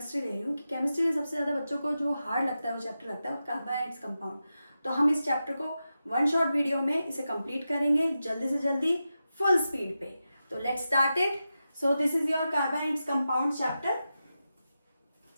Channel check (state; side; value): inverted; both; correlation -0.91